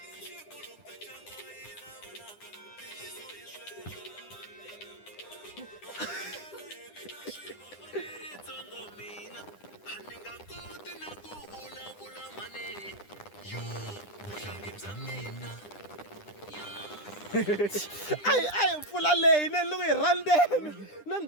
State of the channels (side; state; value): right; late; 9.9 ms